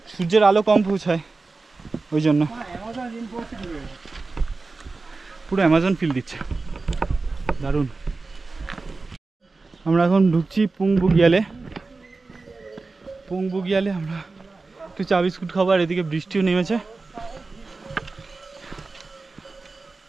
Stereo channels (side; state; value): left; quieter; 3.7 dB